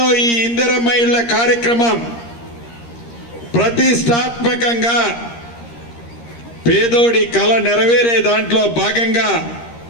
ఈ ఇందిరమ్మ ఇళ్ల కార్యక్రమం ప్రతిష్టాత్మకంగా పేదోడి కల నెరవేరే దాంట్లో భాగంగా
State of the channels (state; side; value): late; right; 13 ms